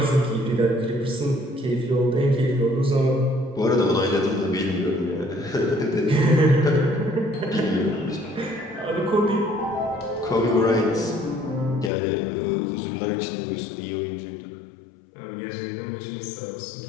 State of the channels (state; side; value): drops out; right; at 11.9 s